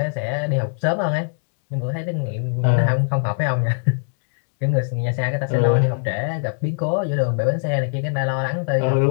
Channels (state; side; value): silent; right; digital silence